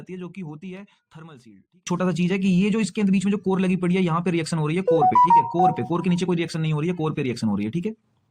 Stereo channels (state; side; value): identical; both; correlation 1.00